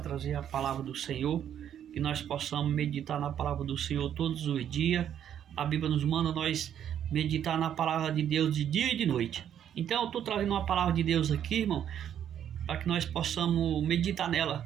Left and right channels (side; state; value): left; quieter; 9.7 dB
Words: a palavra do Senhor, que nós possamos meditar na palavra do Senhor todos os dias. A Bíblia nos manda nós meditar na palavra de Deus de dia e de noite. Então eu estou trazendo uma palavra de Deus aqui, irmão, para que nós possamos meditar nela.